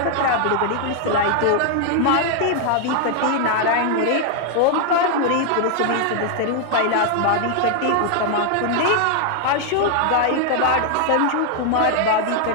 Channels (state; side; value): different; both; correlation 0.00